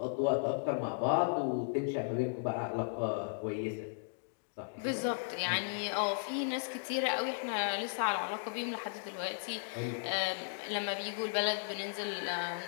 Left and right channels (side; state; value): right; silent; digital silence